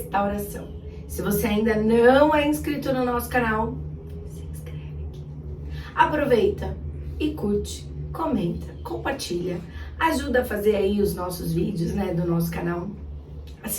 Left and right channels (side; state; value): both; identical; correlation 1.00